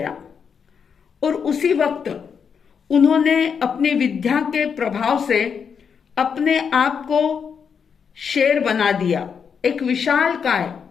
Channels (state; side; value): quieter; right; 6.6 dB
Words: और उसी वक्त उन्होंने अपनी विद्या के प्रभाव से अपने आप को शेर बना दिया, एक विशालकाय,